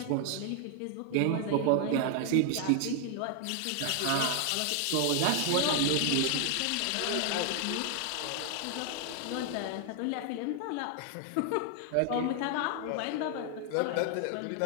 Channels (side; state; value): both; different; correlation 0.00